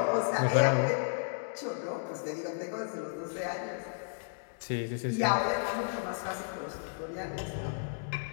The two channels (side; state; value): right; silent; digital silence